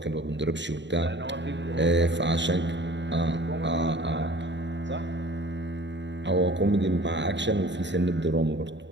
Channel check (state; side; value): late; left; 0.52 ms